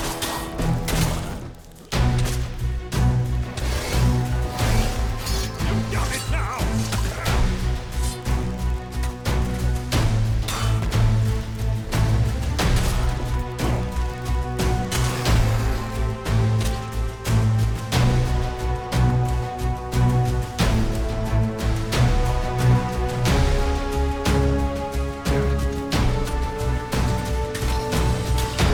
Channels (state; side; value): identical; both; correlation 1.00